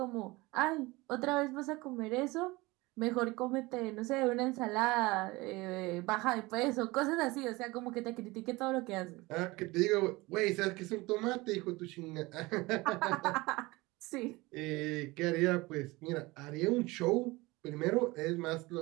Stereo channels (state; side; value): quieter; left; 22.1 dB